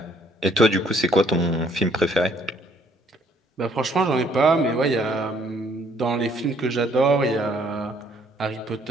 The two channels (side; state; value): both; normal; correlation 0.64